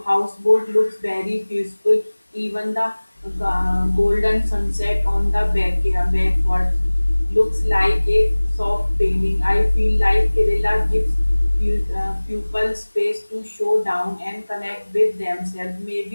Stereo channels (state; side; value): inverted; both; correlation -1.00